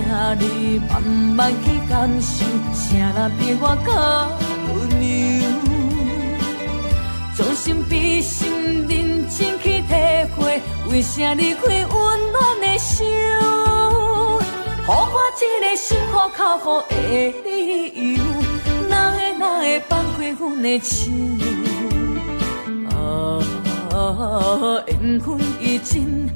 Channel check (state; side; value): inverted; both; correlation -1.00